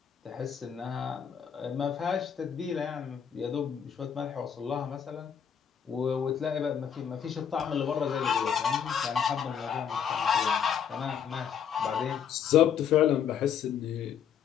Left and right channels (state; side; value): quieter; right; 8.1 dB